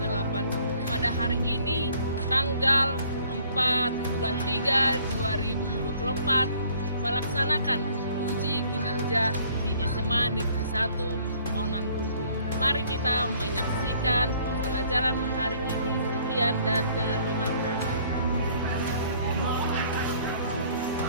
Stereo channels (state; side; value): inverted; both; correlation -0.58